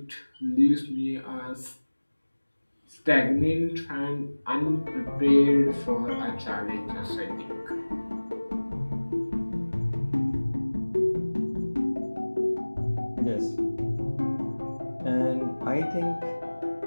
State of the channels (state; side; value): inverted; both; correlation -1.00